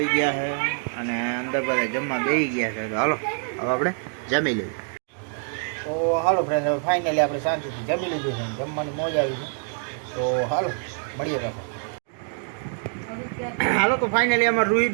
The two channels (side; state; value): left; silent; 57 dB below the other